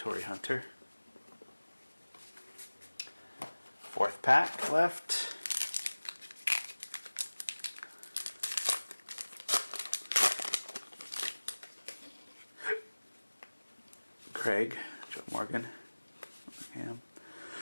Hunter. 4th pack left. Craig, Joe Morgan,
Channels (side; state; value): both; inverted; correlation -1.00